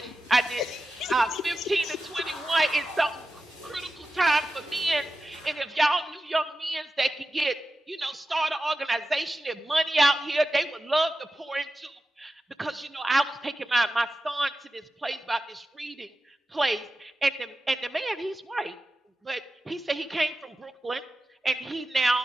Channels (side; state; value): both; normal; correlation 0.93